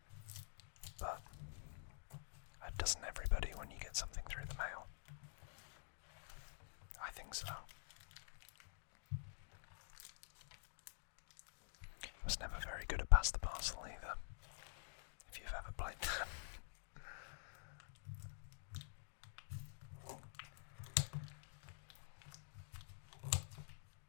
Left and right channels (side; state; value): right; silent; digital silence